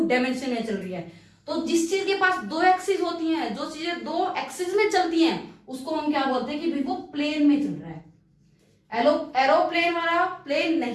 डायमेंशन में चल रही है। तो जिस चीज के पास 2 एक्सिस होती हैं, जो चीजें 2 एक्सिस में चलती हैं, उसको हम क्या बोलते हैं कि भाई वो प्लेन में चल रहा है। एरोप्लेन वाला प्लेन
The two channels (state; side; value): identical; both; correlation 1.00